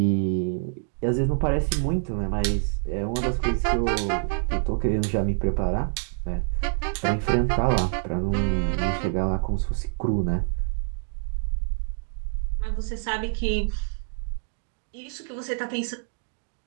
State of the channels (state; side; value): silent; left; digital silence